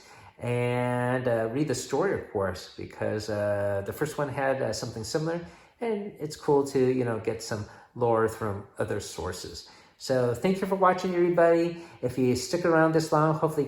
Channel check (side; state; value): both; identical; correlation 1.00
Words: And read the story, of course, because the first one had something similar, and it's cool to, get some lore from other sources. So thank you for watching, everybody. If you stick around this long, hopefully